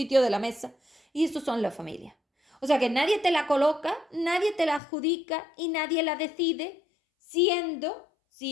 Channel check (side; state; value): right; drops out; at 4.8 s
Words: de la mesa. Y esos son la familia. O sea que nadie te la coloca, nadie te la adjudica y nadie la decide, siendo